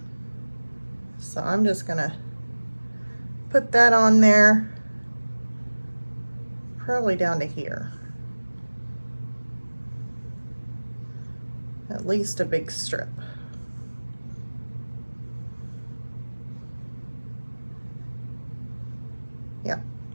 So I'm just going to put that on there, probably down to here. At least a big strip. Yeah,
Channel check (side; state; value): both; inverted; correlation -1.00